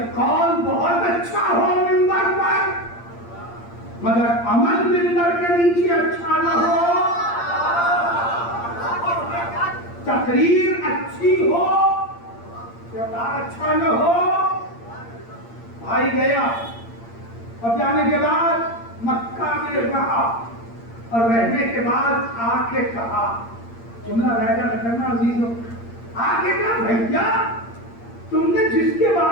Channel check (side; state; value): right; late; 8.7 ms